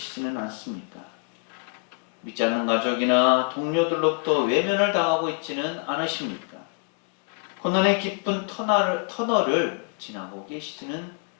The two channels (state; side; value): quieter; right; 33.6 dB